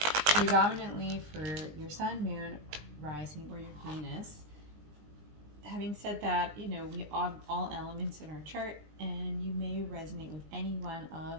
predominantly for your sun, moon, rising, or your Venus. Having said that, you know, we have all elements in our chart, and you may resonate with any one of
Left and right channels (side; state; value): left; late; 20 ms